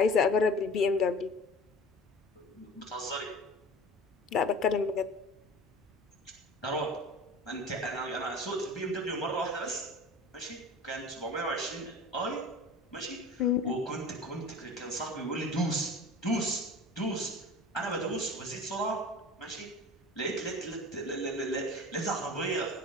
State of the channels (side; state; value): both; normal; correlation 0.39